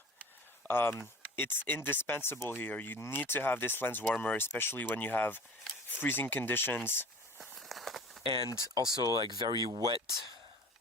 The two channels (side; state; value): both; normal; correlation 0.40